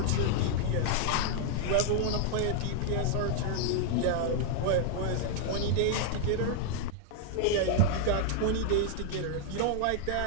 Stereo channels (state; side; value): different; both; correlation 0.00